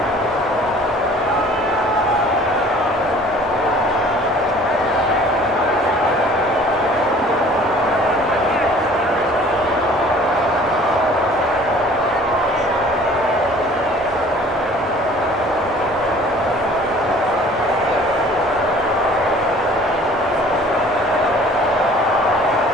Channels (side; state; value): both; normal; correlation 0.51